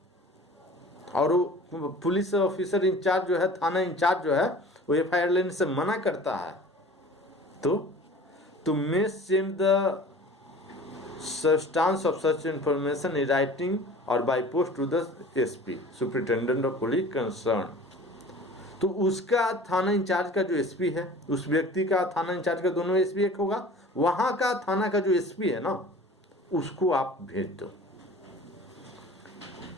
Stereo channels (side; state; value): both; normal; correlation 0.43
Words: और वो पुलिस ऑफिसर इंचार्ज जो है, थाना इंचार्ज जो है, वो FIR लेने से मना करता है, तो may send the substance of such information in writing or by post to the SP superintendent of police concerned। तो उसका थाना इंचार्ज का जो SP है, उस व्यक्ति का थाना इंचार्ज का, दोनों SP एक होगा, वहां का थाना का जो SP है ना, उसको आप भेज दो।